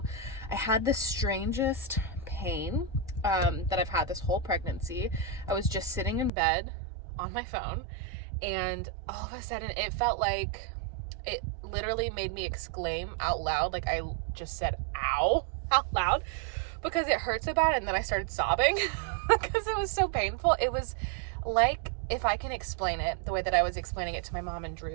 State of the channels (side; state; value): left; drops out; at 6.3 s